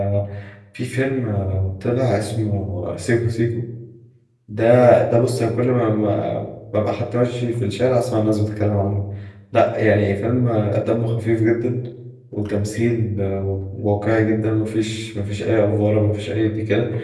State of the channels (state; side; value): identical; both; correlation 1.00